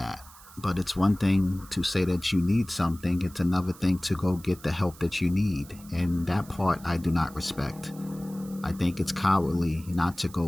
But it's one thing to say that you need something, it's another thing to go get the help that you need, and that part I do not respect. I think it's cowardly not to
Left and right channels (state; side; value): noise; right; hiss, 21 dB below the sound